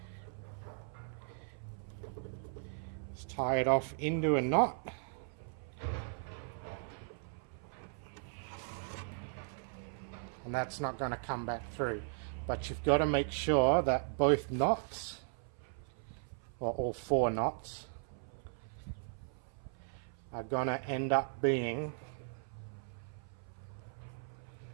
is tie it off into a knot. And that's not going to come back through. But you've got to make sure that both knots, or all 4 knots, are going to end up being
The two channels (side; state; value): left; silent; 53 dB below the other